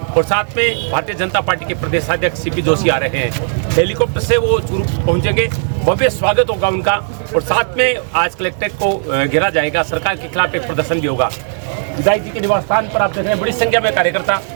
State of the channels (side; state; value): left; silent; digital silence